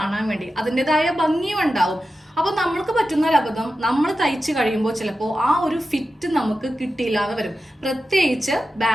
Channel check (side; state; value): both; normal; correlation 0.92